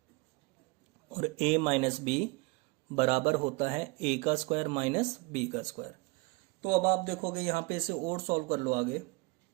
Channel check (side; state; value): left; quieter; 25.9 dB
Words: और ए माइनस बी बराबर होता है ए का स्क्वायर माइनस बी का स्क्वायर। तो अब आप देखोगे यहां पे इसे और सॉल्व कर लो आगे।